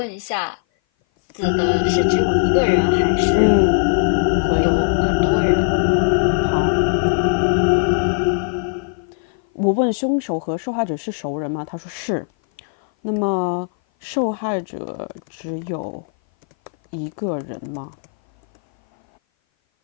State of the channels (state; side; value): silent; right; 58 dB below the other